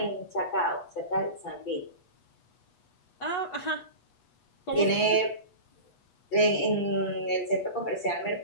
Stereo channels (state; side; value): late; right; 8.2 ms